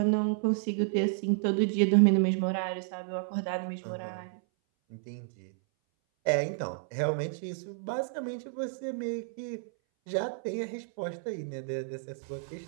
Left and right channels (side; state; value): left; silent; 57 dB below the other